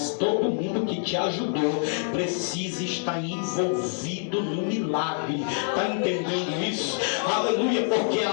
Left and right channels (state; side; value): silent; right; 61 dB below the other